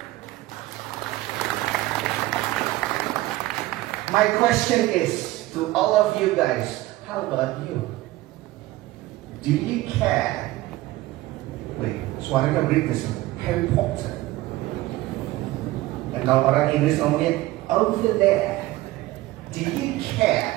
My question is to all of you guys, how about you? Do you care? Wait, suaranya British, Harry Potter. Dan kalau orang Inggris ngomongnya over there, do you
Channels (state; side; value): quieter; left; 17.7 dB